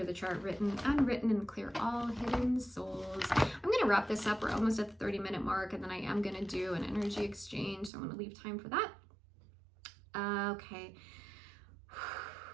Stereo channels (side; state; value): left; drops out; at 7.9 s